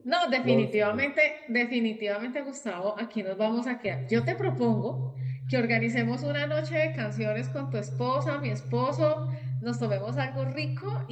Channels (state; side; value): identical; both; correlation 1.00